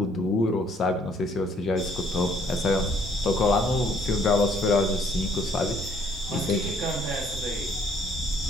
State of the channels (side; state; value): both; normal; correlation 0.63